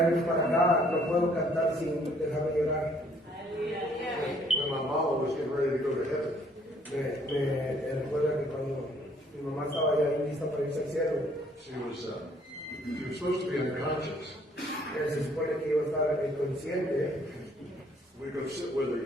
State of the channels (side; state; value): both; normal; correlation 0.62